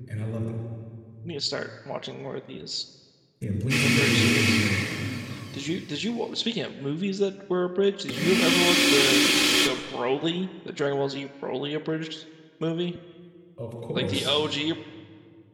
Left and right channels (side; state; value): both; identical; correlation 1.00